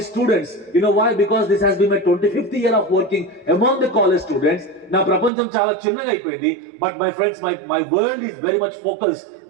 students. You know why? Because this has been my 25th year of working among the college students. నా ప్రపంచం చాలా చిన్నగా అయిపోయింది, but my friends, my world is very much focused,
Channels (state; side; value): drops out; left; at 5.3 s